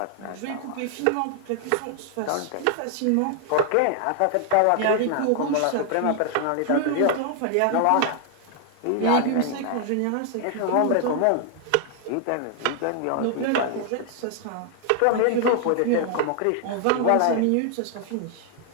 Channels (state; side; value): different; both; correlation 0.00